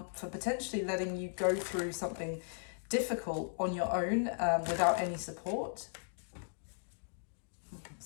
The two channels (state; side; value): silent; right; digital silence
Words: for potentially letting you go through something difficult on your own without any support.